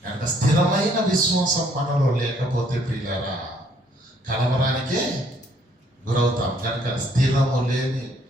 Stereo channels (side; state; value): both; normal; correlation 0.65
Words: కనుక స్థిరమైన విశ్వాసం మనలో లేకపోతే ప్రియులారా కలవరానికే గురవుతాం. కనుక స్థిరము లేని,